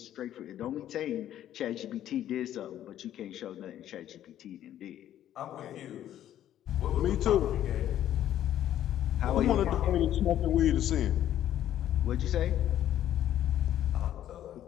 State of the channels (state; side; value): quieter; right; 11.7 dB